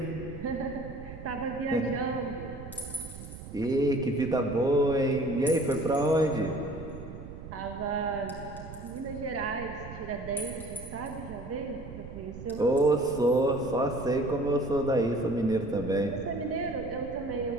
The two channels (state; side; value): noise; right; rumble, 12 dB below the sound